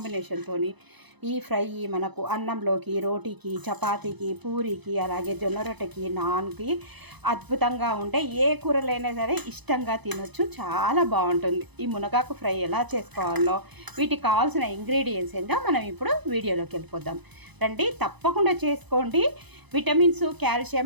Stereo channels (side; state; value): left; late; 0.99 ms